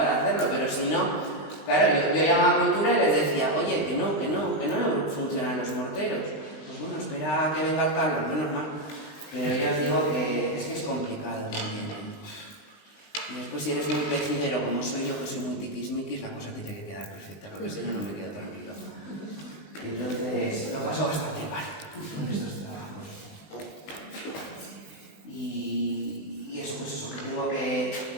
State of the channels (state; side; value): late; right; 20 ms